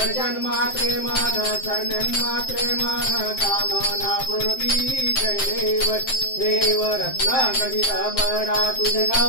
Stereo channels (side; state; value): right; late; 7.7 ms